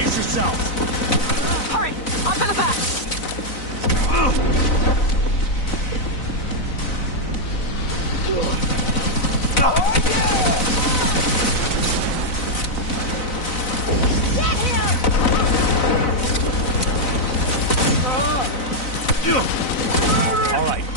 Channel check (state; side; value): late; right; 4.0 ms